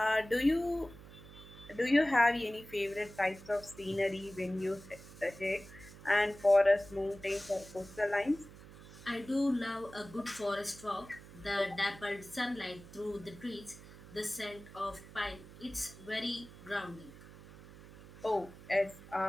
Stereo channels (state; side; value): noise; right; hum, 18 dB below the sound